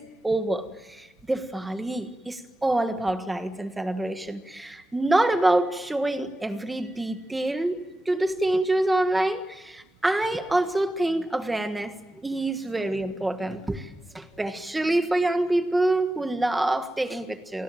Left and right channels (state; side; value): normal; both; correlation 0.92